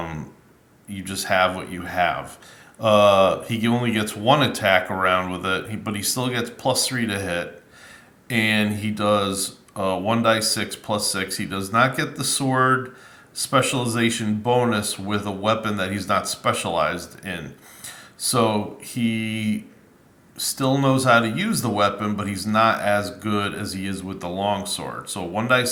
just have what you have. He only gets 1 attack around with it, but he still gets +3 to hit. And he does 1d6 plus 6. He does not get the sword specialization bonus with a weapon that he's not specialized in. So he still knows how to use the weapon, but he's not as good as he is with the longsword. So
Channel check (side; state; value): both; identical; correlation 1.00